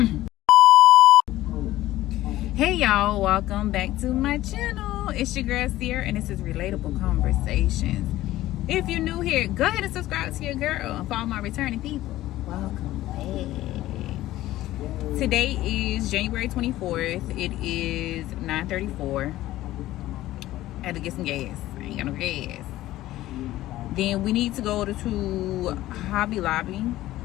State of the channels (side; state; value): right; quieter; 15.4 dB